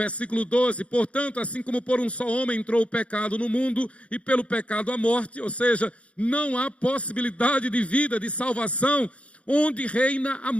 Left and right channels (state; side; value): late; right; 0.062 ms